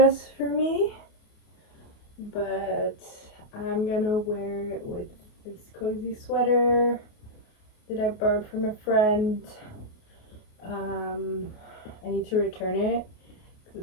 for me, but I'm gonna wear it with this cozy sweater that I borrowed from a friend. I need to return it because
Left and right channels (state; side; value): late; right; 28 ms